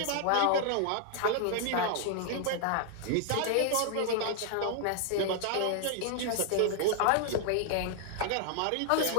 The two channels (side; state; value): both; different; correlation 0.00